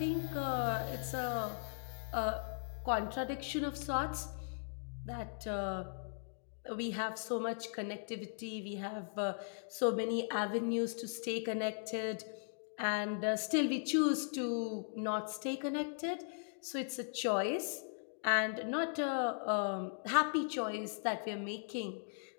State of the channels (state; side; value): silent; right; digital silence